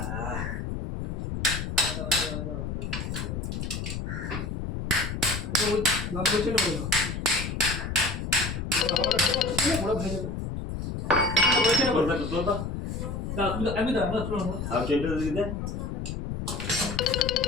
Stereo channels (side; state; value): left; noise; rumble, 4 dB below the sound